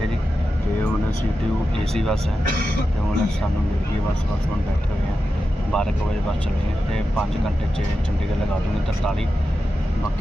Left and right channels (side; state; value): both; normal; correlation 0.91